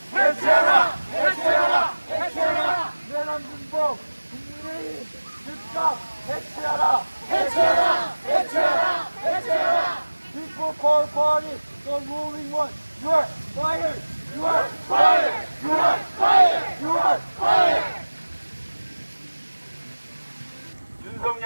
해체하라. 해체하라. 해체하라. 내란 군법 국민의힘 즉각 해체하라. 해체하라. 해체하라. 해체하라. People call party the ruling one. You are fired. You are fired. You are fired. You are fired.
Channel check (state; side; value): inverted; both; correlation -1.00